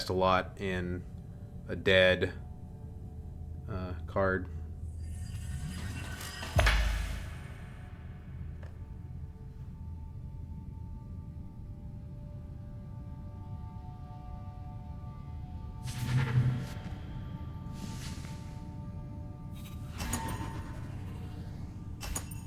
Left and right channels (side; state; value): both; identical; correlation 1.00